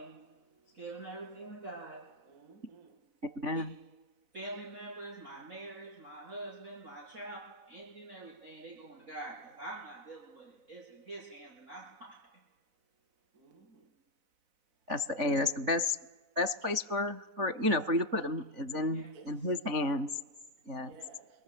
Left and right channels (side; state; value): left; late; 4.0 ms